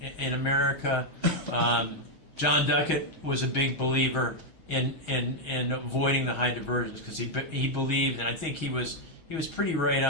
in America. John Duckett was a big believer in avoiding the high diversions because he believed, and I think he was pretty right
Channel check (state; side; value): late; right; 6.3 ms